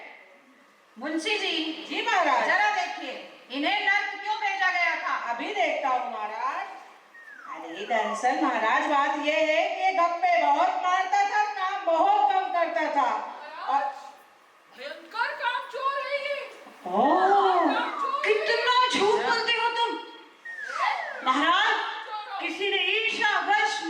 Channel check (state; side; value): identical; both; correlation 1.00